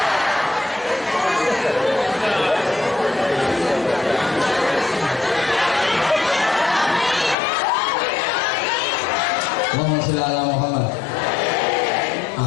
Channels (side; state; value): right; drops out; at 7.4 s